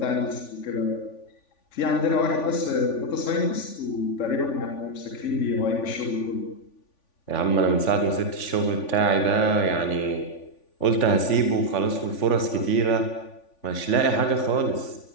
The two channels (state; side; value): late; right; 3.5 ms